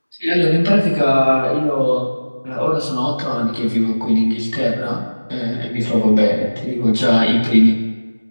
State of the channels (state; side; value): inverted; both; correlation -1.00